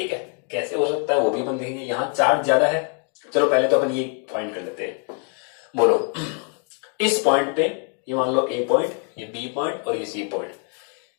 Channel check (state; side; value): quieter; right; 39.7 dB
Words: है, कैसे हो सकता है वो भी अपन देखेंगे। यहां चार्ज ज्यादा है, चलो पहले तो अपन ये फाइंड कर लेते हैं, बोलो इस पॉइंट पे ये मान लो A पॉइंट, ये B पॉइंट और ये C पॉइंट,